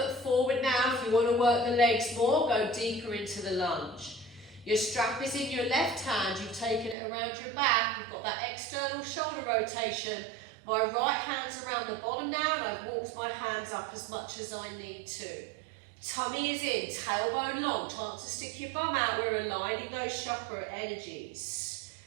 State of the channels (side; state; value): left; drops out; at 7.0 s